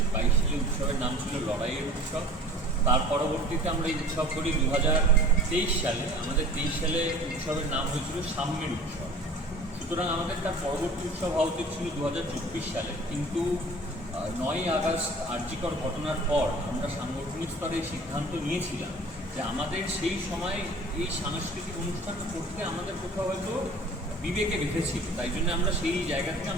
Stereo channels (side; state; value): both; normal; correlation 0.44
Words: 22 সালে উৎসবের নাম ছিল লড়াইয়ের উৎসব। তার পরবর্তীতে আমরা এই উৎসব করি 2023 সালে। আমাদের 23 সালে উৎসবের নাম হয়েছিল সাম্যের উৎসব। সুতরাং আমাদের তার পরবর্তী উৎসব হওয়া উচিত ছিল 2024 সালে, কিন্তু 9ই আগস্ট আরজিকর ঘটনার পর আমরা সাংগঠনিক স্তরে সিদ্ধান্ত নিয়েছিলাম যে আমাদের সেই সময় এই সাংস্কৃতিক অনুষ্ঠান করতে আমাদের কোথাও হয়তো বিবেকে বেঁধেছিল। তাই জন্য আমরা সেই জায়গা থেকে